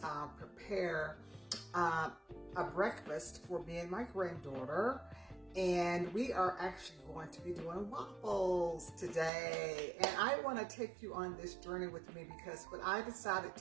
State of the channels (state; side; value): drops out; left; at 9.3 s